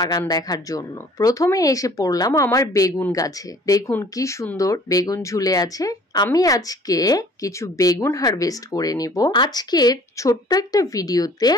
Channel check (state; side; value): normal; both; correlation 0.52